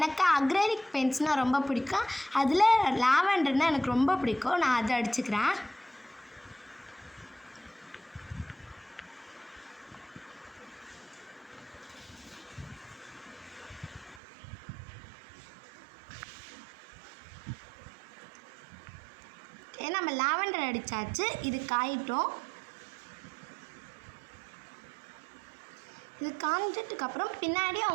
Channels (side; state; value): left; drops out; at 14.2 s